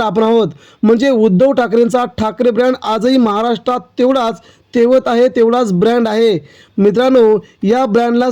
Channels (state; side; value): identical; both; correlation 1.00